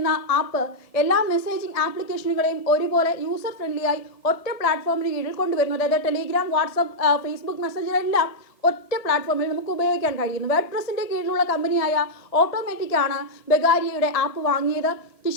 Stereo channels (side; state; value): right; late; 1.6 ms